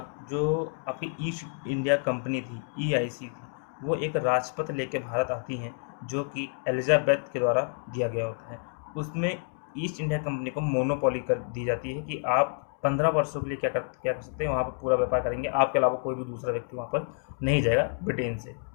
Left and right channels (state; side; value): silent; right; 59 dB below the other